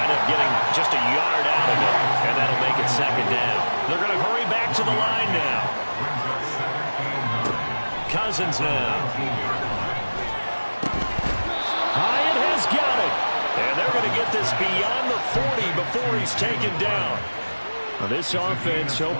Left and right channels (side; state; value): both; inverted; correlation -1.00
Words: up getting just a yard out of it, and that'll make it 2nd down. They're going to hurry back to the line now. Cousins now. Hyatt has got it. And they're going to get this beyond the 40 before he's taken down. Now this offense